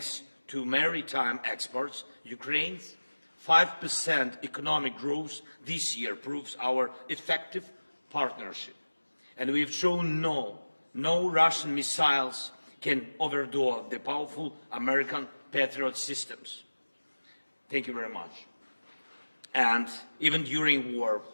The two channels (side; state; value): both; inverted; correlation -1.00